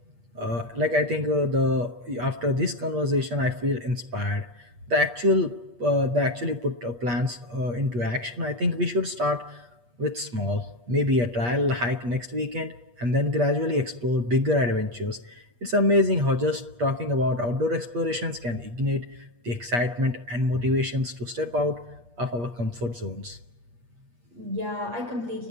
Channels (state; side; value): late; left; 8.4 ms